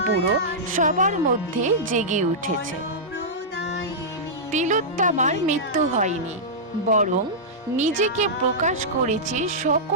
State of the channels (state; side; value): normal; both; correlation -0.12